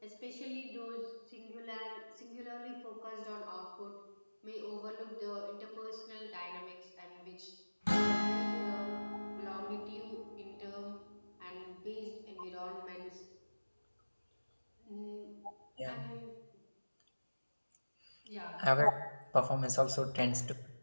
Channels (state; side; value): inverted; both; correlation -1.00